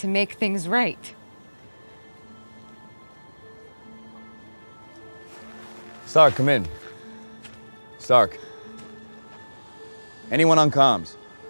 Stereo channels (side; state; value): both; inverted; correlation -1.00